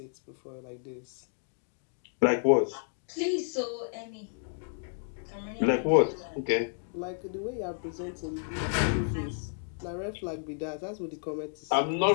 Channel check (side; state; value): right; silent; digital silence